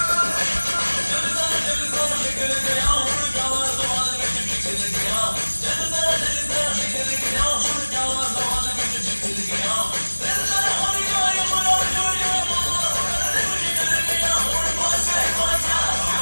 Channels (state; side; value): inverted; both; correlation -1.00